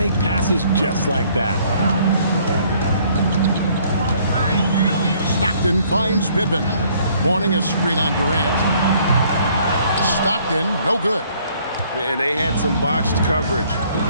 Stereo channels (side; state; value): both; inverted; correlation -0.62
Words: passes just like that. Stockton finds Pippen. Morning a screen on Durant. Stockton, no good. And they had some botched coverage